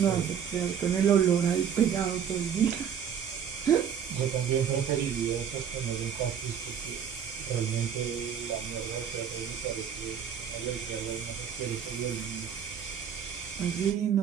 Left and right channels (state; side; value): quieter; left; 8.1 dB